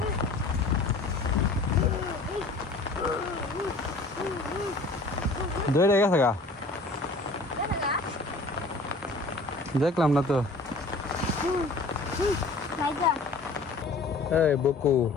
ধরে গেছে গা দেখো না দেখলাম না তো নাইজা এই বকু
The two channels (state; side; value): quieter; right; 3.1 dB